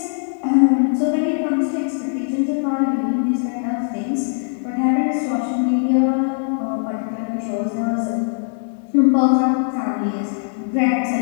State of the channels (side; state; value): right; silent; digital silence